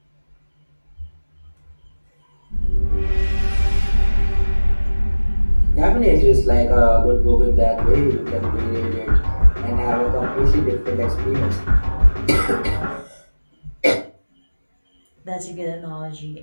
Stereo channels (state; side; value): inverted; both; correlation -1.00